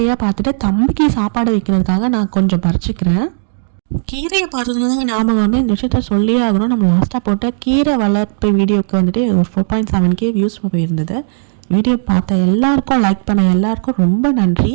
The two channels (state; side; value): silent; left; digital silence